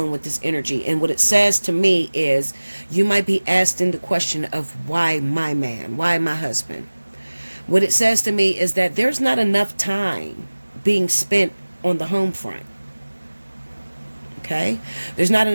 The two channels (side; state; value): both; inverted; correlation -1.00